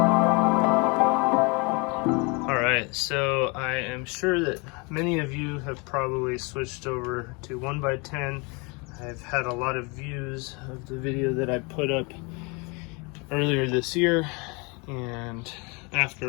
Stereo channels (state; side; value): quieter; right; 29.8 dB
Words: So I am sure that many of you have probably switched over to 1x10. I've had a lot of views of the video that I put up earlier this year, and